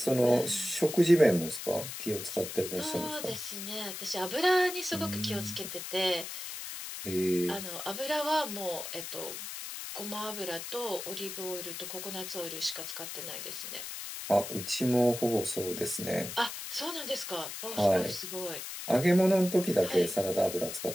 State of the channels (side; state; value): left; noise; hiss, 8 dB below the sound